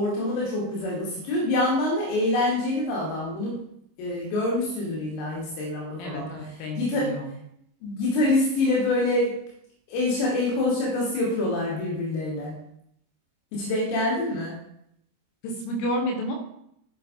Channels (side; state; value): right; late; 26 ms